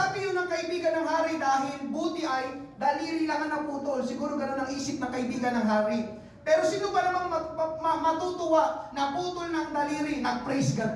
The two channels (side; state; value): both; identical; correlation 1.00